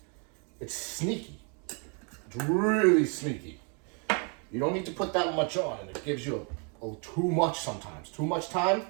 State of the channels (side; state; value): left; quieter; 37.3 dB